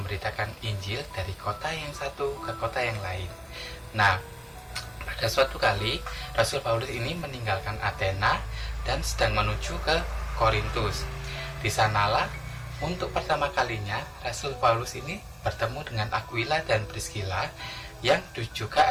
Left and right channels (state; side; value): identical; both; correlation 1.00